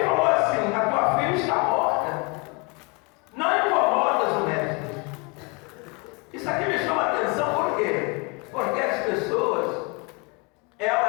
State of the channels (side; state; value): right; quieter; 30.8 dB